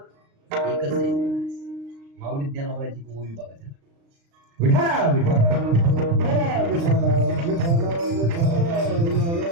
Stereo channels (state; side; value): late; left; 36 ms